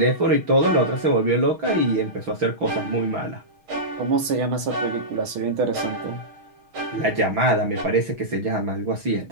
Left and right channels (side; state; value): left; late; 6.3 ms